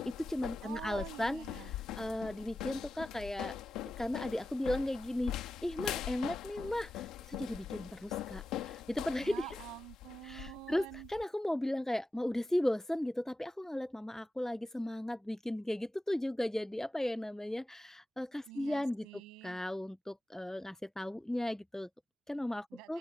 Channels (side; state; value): both; normal; correlation 0.92